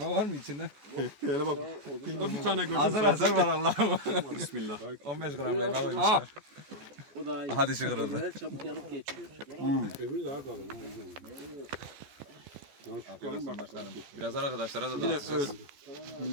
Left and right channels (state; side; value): late; left; 14 ms